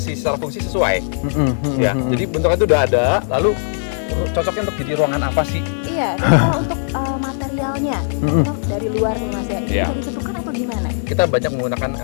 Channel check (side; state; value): right; silent; digital silence